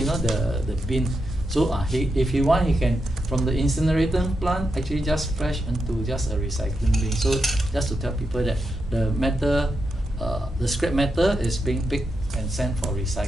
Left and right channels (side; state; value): both; normal; correlation 0.85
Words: the bin. So if he want, he can from the incinerator plant actually just fresh into just a recycling bin. So just to tell people that the metal, the scrap metal is being picked and sent for